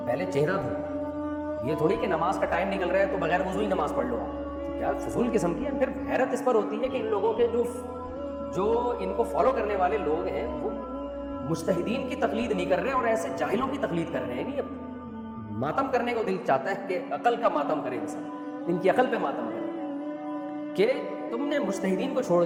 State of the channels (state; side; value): identical; both; correlation 1.00